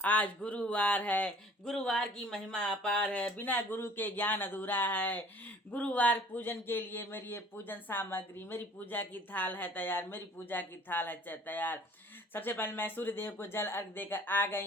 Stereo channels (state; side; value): normal; both; correlation 0.52